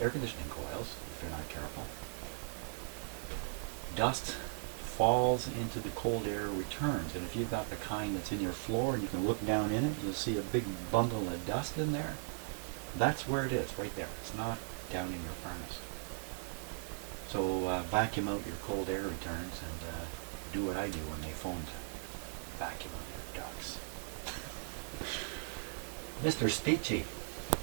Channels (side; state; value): left; silent; 52 dB below the other